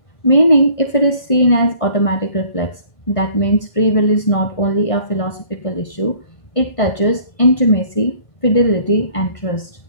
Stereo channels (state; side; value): late; right; 1.5 ms